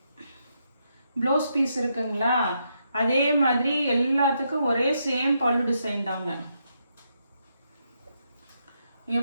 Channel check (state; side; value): inverted; both; correlation -0.80